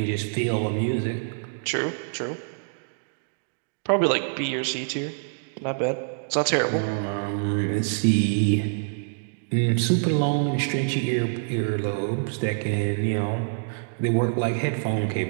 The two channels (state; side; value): silent; left; digital silence